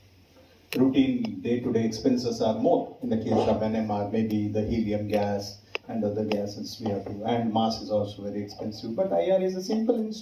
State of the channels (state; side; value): identical; both; correlation 1.00